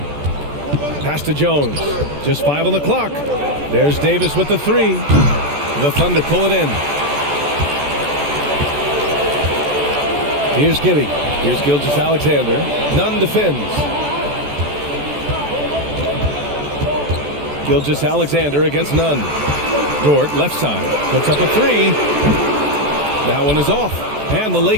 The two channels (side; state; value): left; late; 14 ms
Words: Pass to Jones. Just 5 on the clock. There's Davis with the 3. The Thunder pull it in. Here's Giddy. Here's Gilgeous-Alexander. Nunn defends. Gilgeous-Alexander against Nunn. Dort, left side, puts up a 3. That one is off. And the